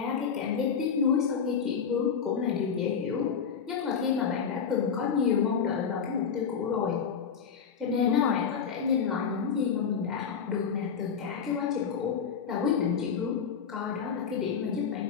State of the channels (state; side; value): quieter; right; 6.7 dB